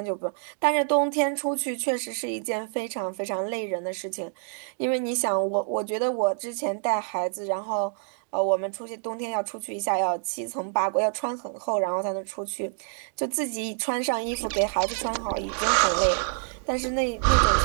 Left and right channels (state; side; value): silent; left; digital silence